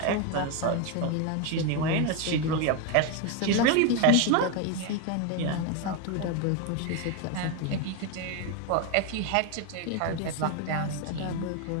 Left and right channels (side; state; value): both; different; correlation 0.02